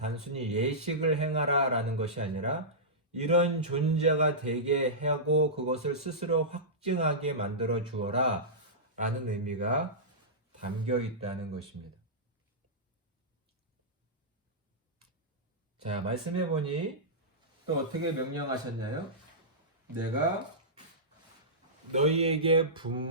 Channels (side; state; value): both; normal; correlation -0.16